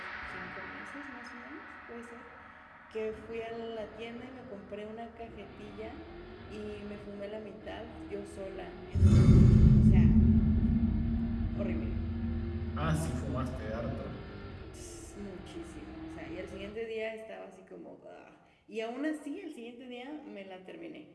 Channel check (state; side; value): identical; both; correlation 1.00